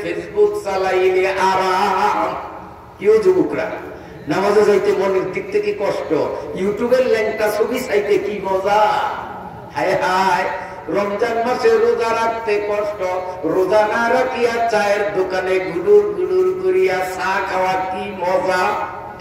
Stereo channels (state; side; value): identical; both; correlation 1.00